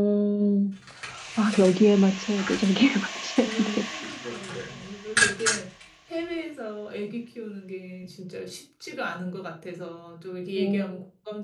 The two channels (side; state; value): both; identical; correlation 1.00